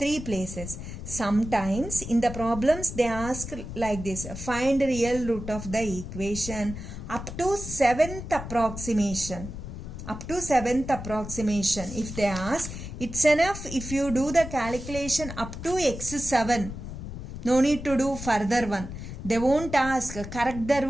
places. Sometimes in the problems they ask like this, find real root of the equation up to 7th approximation. Up to 7th approximation. If they ask, it's enough if you do the calculation up to x7. No need to do further one. They won't ask correct the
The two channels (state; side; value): noise; left; rumble, 9 dB below the sound